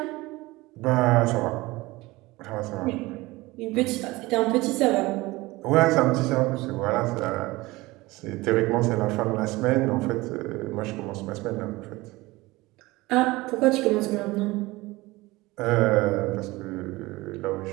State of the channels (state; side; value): quieter; left; 20.6 dB